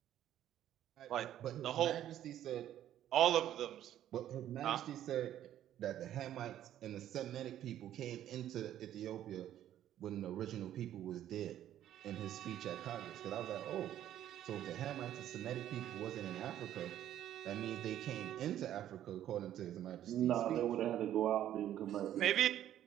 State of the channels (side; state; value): left; quieter; 11.7 dB